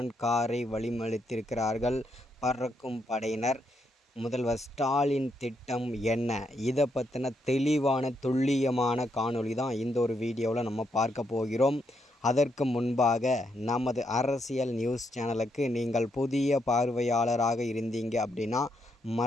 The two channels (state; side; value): normal; both; correlation 0.78